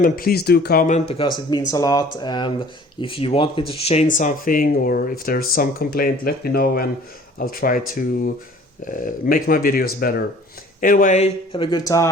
And please do comment, because it means a lot. And if you want me to change something, or if there's some complaint, let me know and I'll try to make my videos better. Anyway, have a good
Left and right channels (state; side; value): normal; both; correlation 0.51